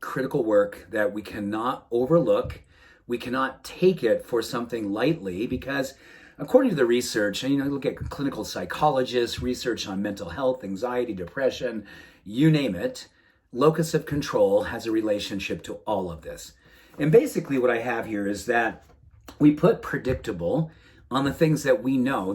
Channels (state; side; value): identical; both; correlation 1.00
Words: critical work that we cannot overlook. We cannot take it for something lightly because according to the research, and look at clinical psychologists, research on mental health, anxiety, depression, you name it, locus of control has a relationship to all of this. And basically what I have here is that we put predictable on the things that we know